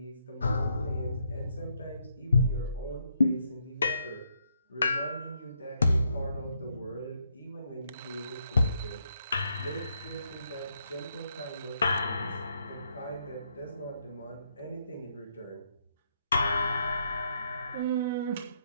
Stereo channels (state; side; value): inverted; both; correlation -0.75